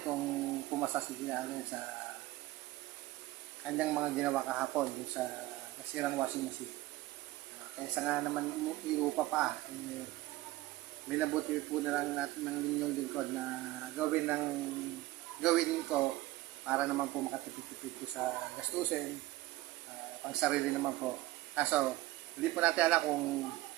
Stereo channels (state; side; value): quieter; left; 17.8 dB